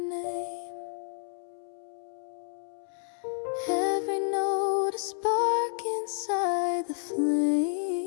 every note a spark inside the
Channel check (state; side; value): silent; right; 57 dB below the other